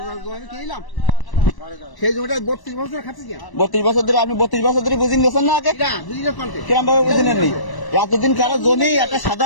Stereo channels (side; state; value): right; late; 1.0 ms